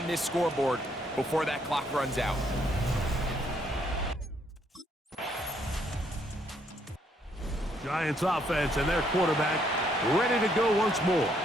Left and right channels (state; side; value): normal; both; correlation 0.71